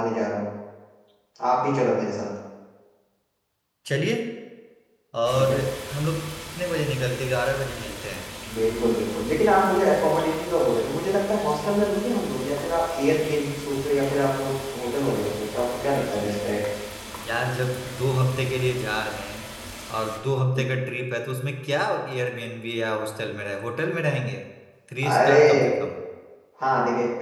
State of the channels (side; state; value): both; identical; correlation 1.00